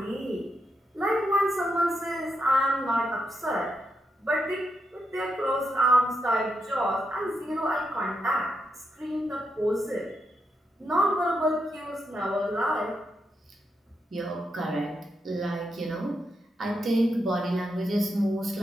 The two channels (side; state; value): both; normal; correlation 0.83